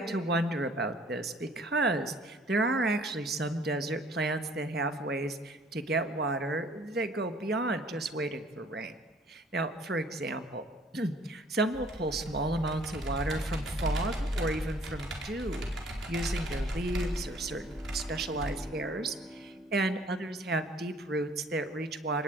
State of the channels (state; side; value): normal; both; correlation 0.56